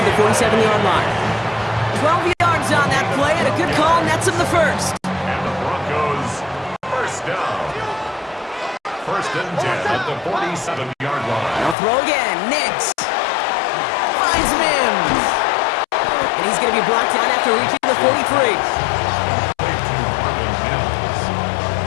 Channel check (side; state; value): right; drops out; at 11.8 s